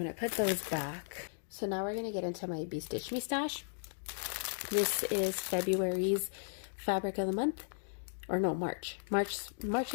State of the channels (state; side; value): silent; right; digital silence